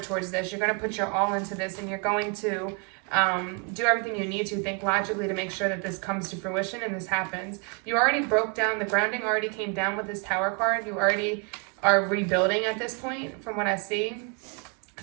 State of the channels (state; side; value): quieter; left; 33.6 dB